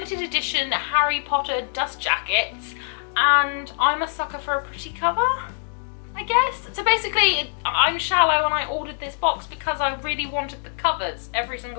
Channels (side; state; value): right; silent; digital silence